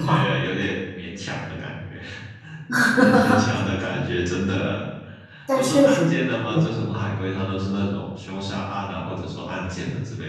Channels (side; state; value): both; identical; correlation 1.00